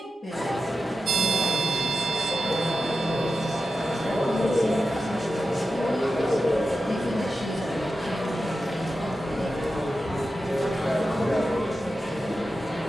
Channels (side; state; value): both; normal; correlation 0.91